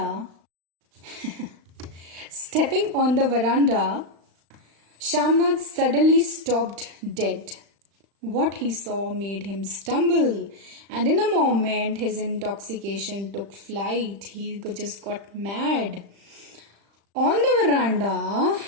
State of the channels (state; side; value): late; left; 35 ms